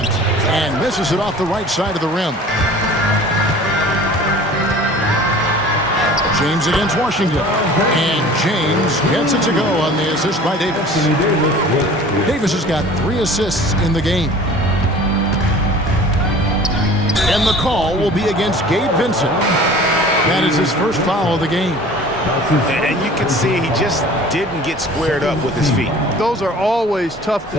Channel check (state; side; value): normal; both; correlation 0.44